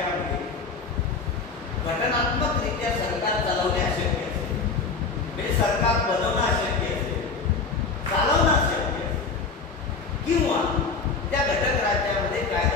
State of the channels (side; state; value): right; quieter; 4.5 dB